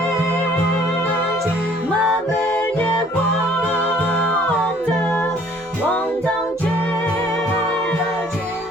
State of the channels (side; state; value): both; normal; correlation 0.57